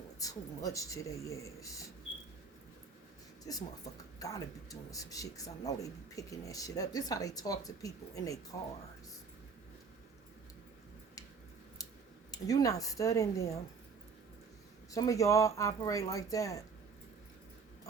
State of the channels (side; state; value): left; quieter; 5.3 dB